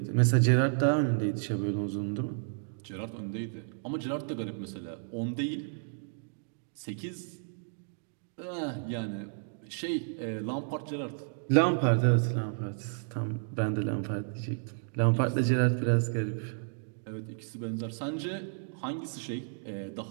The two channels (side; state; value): left; silent; digital silence